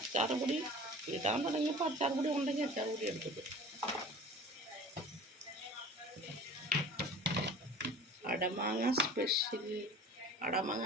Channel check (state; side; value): normal; both; correlation 0.41